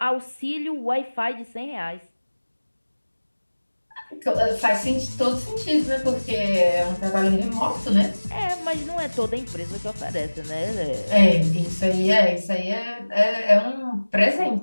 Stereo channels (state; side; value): inverted; both; correlation -1.00